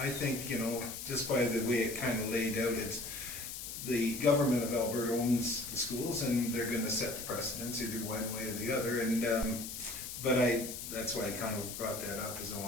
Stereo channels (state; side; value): noise; left; hiss, 8 dB below the sound